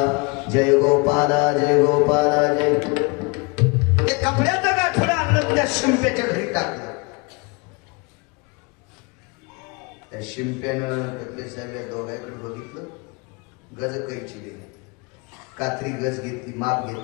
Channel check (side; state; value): right; quieter; 29.0 dB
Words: जय गोपाला जय गोपाला जय. ते कपड्याचं गाठोडं आणलं त्या शिंप्याच्या घरी टाकलं. त्या शिंप्यानं कपडे साहेब दोघांकडे बघितलं. गज कैची दिली. कात्री गज घेतली. माप